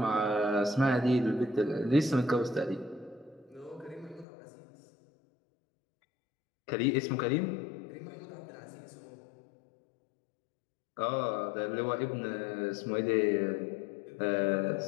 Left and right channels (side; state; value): right; drops out; at 4.2 s